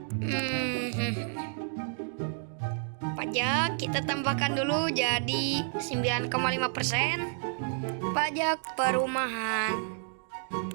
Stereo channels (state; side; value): silent; left; digital silence